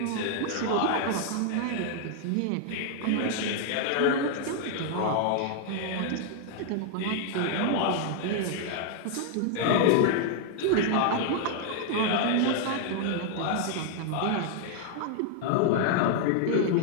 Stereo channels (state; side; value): different; both; correlation 0.00